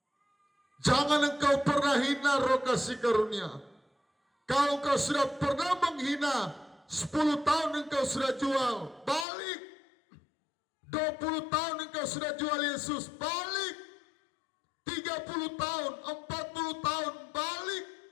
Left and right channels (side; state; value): right; drops out; at 9.2 s